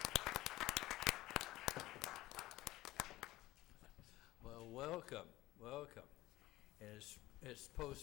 Well, welcome, welcome. And it's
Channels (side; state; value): right; quieter; 17.2 dB